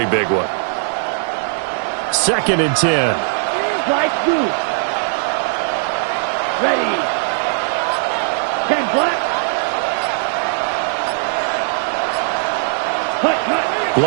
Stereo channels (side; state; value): left; silent; 67 dB below the other